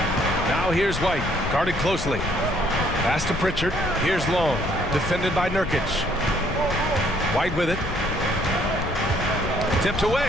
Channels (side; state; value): left; noise; rumble, 7 dB below the sound